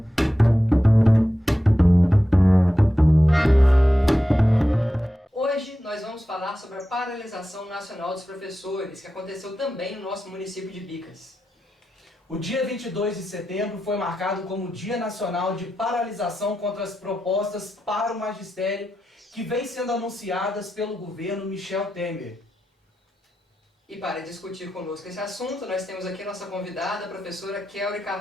Hoje nós vamos falar sobre a paralisação nacional dos professores, que aconteceu também no nosso município de Bicas. O dia 22 de setembro foi marcado como Dia Nacional de Paralisação contra as propostas para o magistério que vem sendo anunciadas pelo governo Michel Temer. E para discutir conosco esse assunto, nós temos aqui a nossa convidada, a professora Kelly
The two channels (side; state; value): both; normal; correlation 0.90